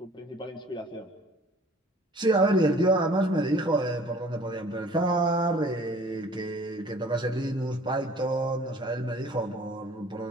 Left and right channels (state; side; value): normal; both; correlation 0.52